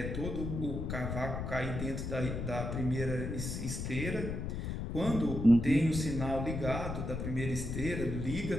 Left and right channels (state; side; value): noise; left; rumble, 4 dB below the sound